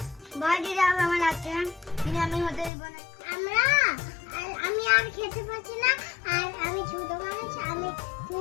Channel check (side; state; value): right; drops out; at 2.7 s